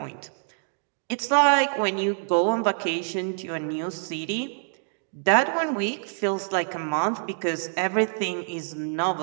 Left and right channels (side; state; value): left; silent; digital silence